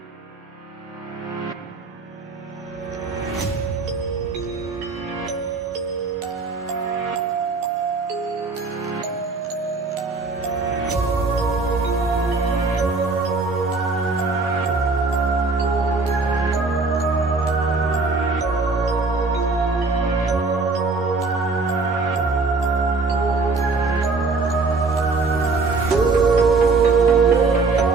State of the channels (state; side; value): quieter; left; 4.0 dB